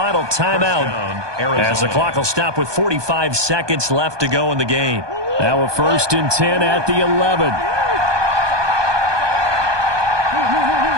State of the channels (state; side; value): late; left; 1.2 ms